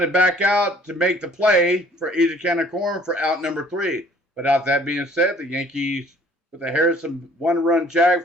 back out to make the play for easy can of corn for out number 3. But out that being said, the Yankees with a Harrison one-run jag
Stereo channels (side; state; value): both; normal; correlation 0.56